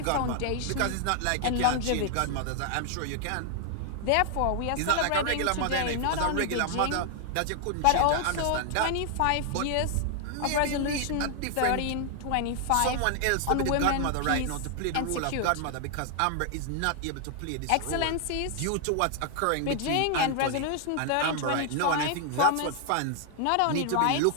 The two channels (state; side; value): different; both; correlation 0.00